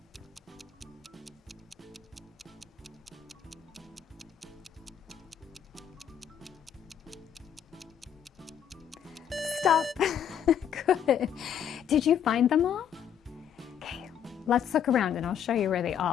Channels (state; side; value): quieter; right; 8.9 dB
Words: Stop. Good. Did you find them all? Okay, let's look around and I'll show you where they